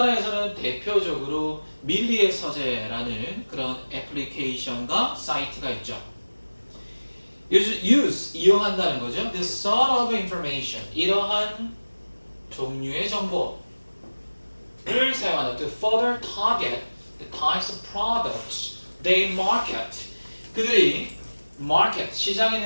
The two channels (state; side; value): inverted; both; correlation -1.00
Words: 대표적으로 밀리의 서재라는 그런 애플리케이션과 사이트가 있죠. 이용한다는 거죠. This sort of information, 이러한 종류의 정보를 사용한다. To further target the types of products they market. 그들이 시장에